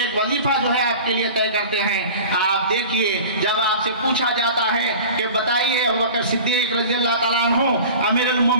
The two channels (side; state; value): both; inverted; correlation -0.39